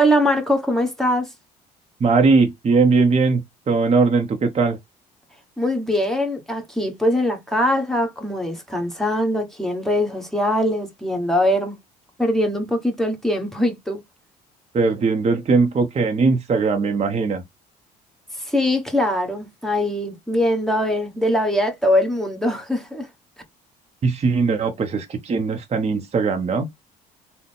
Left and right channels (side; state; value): both; normal; correlation 0.68